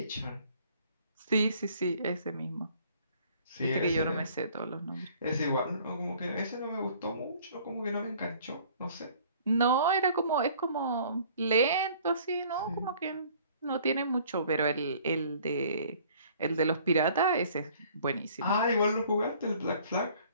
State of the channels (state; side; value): inverted; both; correlation -0.55